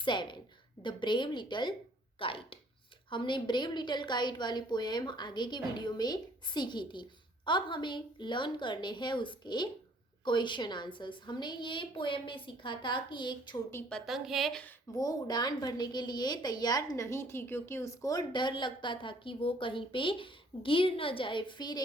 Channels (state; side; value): normal; both; correlation 0.60